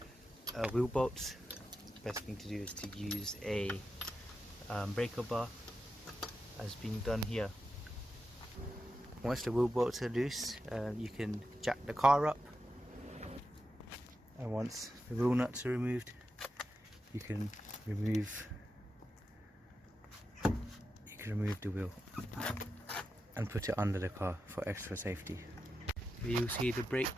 wheel bolts. Best thing to do is to use a breaker bar as being done here. Once the wheel bolts are loose, you can jack the car up, and once the wheel nuts are removed, you can remove the wheel and put it under the car for extra safety. You'll see the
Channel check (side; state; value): both; normal; correlation 0.89